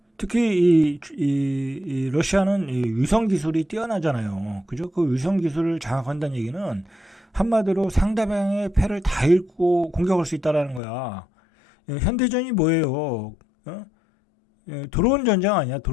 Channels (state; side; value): drops out; right; at 10.8 s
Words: 특히 이 러시아는 이 위성 기술이 뛰어나잖아요. 그죠? 그 위성 기술을 장악한다는 얘기는 한마디로 상대방의 패를 다 읽고 공격할 수 있다라는 거야. 현대전이 뭐예요? 드론 전쟁 아니야,